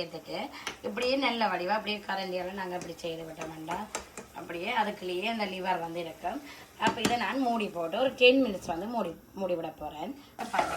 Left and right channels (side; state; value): both; identical; correlation 1.00